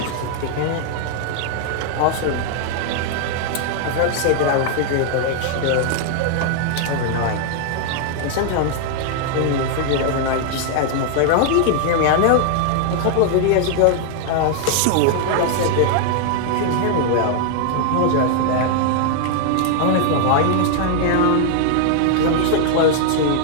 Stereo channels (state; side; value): different; both; correlation 0.00